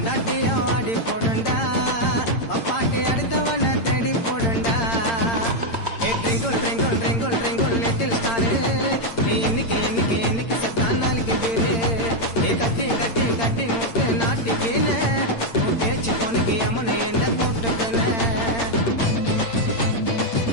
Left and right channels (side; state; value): right; late; 8.8 ms